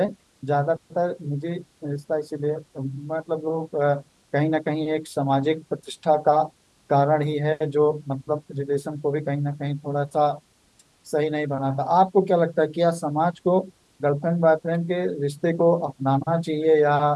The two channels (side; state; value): both; identical; correlation 1.00